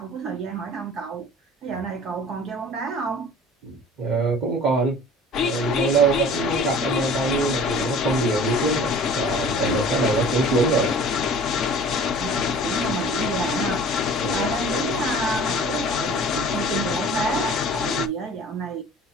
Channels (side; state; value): both; normal; correlation 0.45